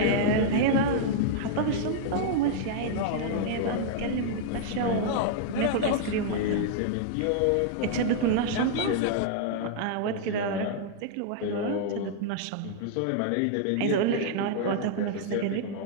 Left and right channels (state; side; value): different; both; correlation -0.01